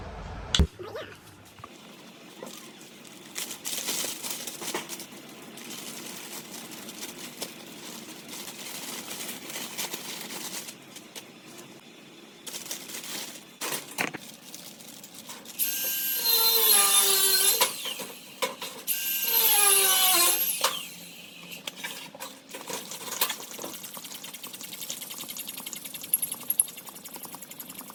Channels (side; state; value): both; identical; correlation 1.00